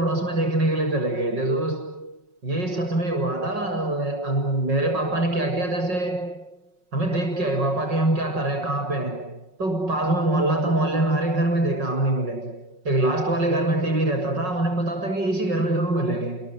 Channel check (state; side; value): late; left; 5.4 ms